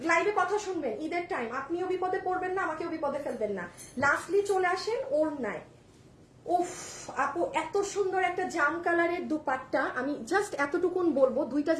লাইভে কথা শুনবেন, ঈদের টাইম, আপনিও বিপদে পড়বেন না, আমাকেও বিপদে ফেলবেন না। লাস্টলি চলে আসেন ওড়নায়। উফ আপু, এত সুন্দর একটা জাম কালারের দুপাট্টা। আমি জাস্ট এতটুকুন বলবো, দুইটা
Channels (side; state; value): both; identical; correlation 1.00